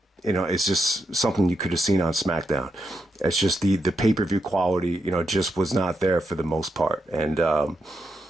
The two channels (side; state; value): both; normal; correlation 0.83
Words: it's just something you could have seen on SmackDown. It's just the pay-per-view quality, just was not there for the most part. And